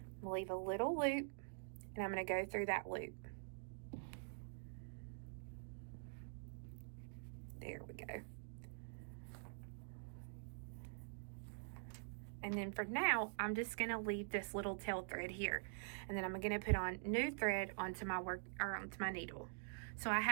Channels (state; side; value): silent; left; digital silence